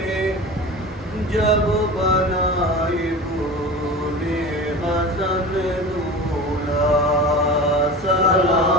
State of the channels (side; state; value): both; normal; correlation 0.33